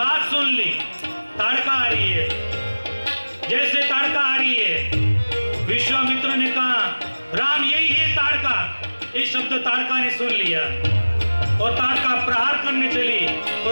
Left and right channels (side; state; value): both; inverted; correlation -1.00